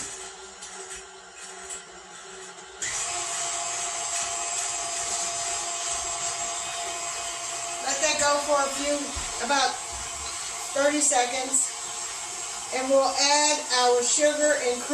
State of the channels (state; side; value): identical; both; correlation 1.00